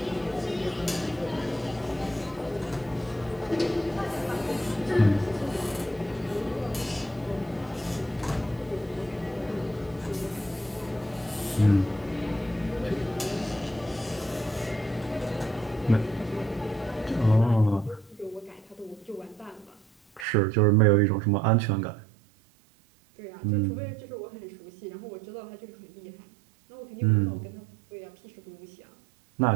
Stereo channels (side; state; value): left; drops out; at 20.2 s